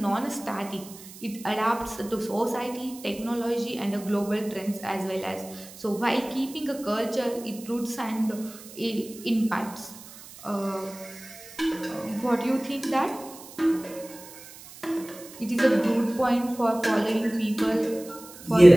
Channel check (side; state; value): right; noise; hiss, 17 dB below the sound